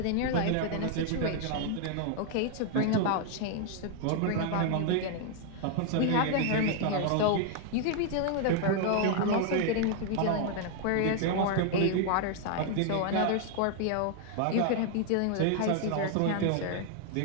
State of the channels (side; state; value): both; different; correlation 0.00